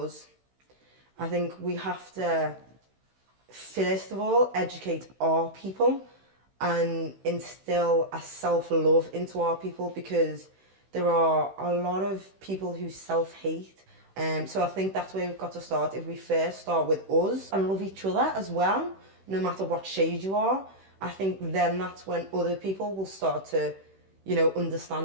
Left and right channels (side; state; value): left; late; 16 ms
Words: I think we have to, first of all, educate our people and instill a self-love into our people, because there are a lot of people who self-hate. So I think that's where we've got to start. If we first start with us and love each other as well, no matter what shade you are, I think then that's when other people will start to, you know,